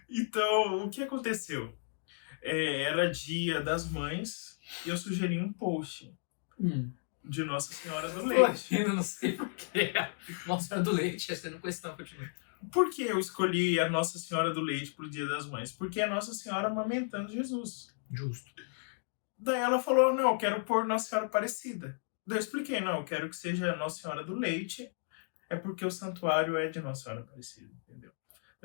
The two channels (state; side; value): silent; right; digital silence